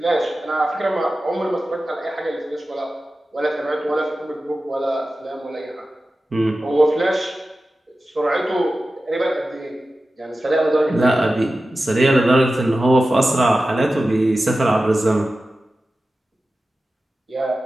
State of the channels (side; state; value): both; normal; correlation 0.94